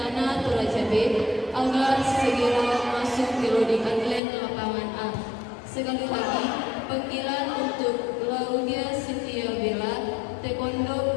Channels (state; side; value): drops out; right; at 4.2 s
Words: Toraja B agar segera masuk ke loading atlet lapangan A. Sekali lagi, panggilan untuk Claudia Cynthia Bella